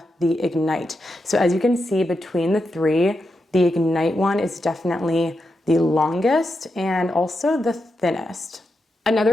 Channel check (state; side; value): normal; both; correlation 0.86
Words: the Ignite. So as you can see between the three, the Ignite one is definitely the longest and also the thinnest.